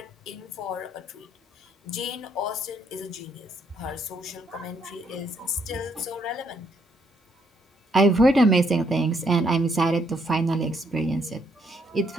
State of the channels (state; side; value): normal; both; correlation 0.72